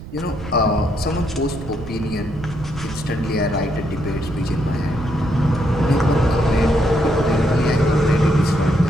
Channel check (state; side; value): noise; right; rumble, 13 dB below the sound